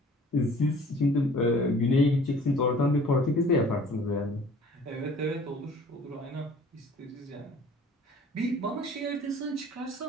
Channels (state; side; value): normal; both; correlation 0.50